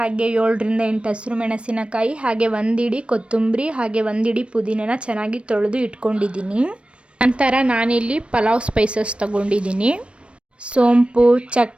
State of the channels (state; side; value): late; left; 0.059 ms